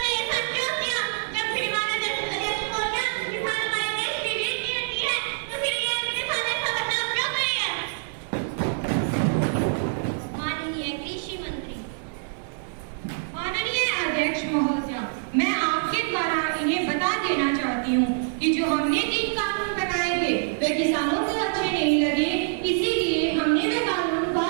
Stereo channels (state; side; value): silent; left; 61 dB below the other